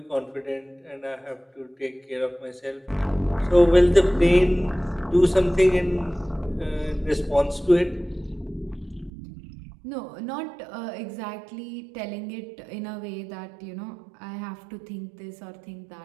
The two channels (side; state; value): left; drops out; at 9.1 s